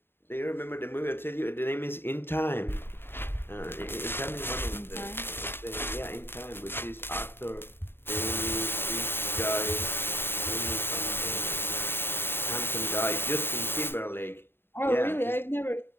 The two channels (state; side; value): late; right; 0.11 ms